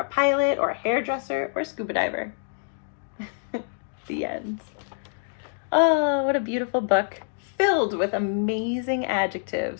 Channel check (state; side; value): silent; right; digital silence